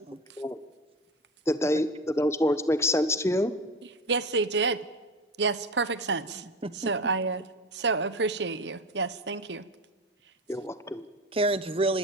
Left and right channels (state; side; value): normal; both; correlation 0.26